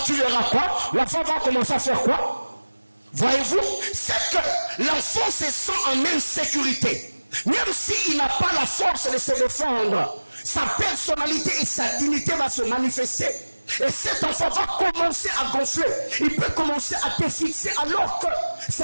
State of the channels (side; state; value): both; inverted; correlation -1.00